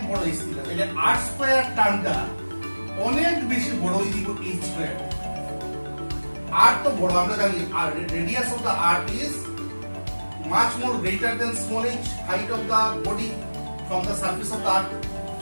বড় h থেকে, তাহলে r স্কয়ার টার্মটা অনেক বেশি বড় হয়ে দিব h স্কয়ার। r তো বড় আমরা জানি, আর radius of the r is much more greater than small h, height of the body from the surface of the earth।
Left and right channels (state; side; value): inverted; both; correlation -1.00